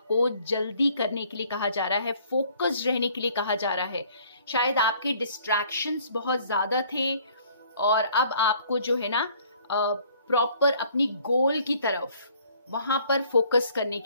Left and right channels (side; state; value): both; inverted; correlation -0.58